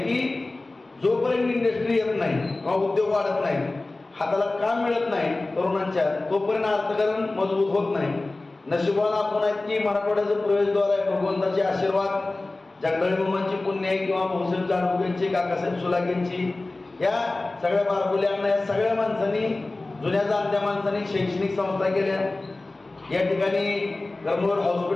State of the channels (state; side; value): quieter; right; 3.1 dB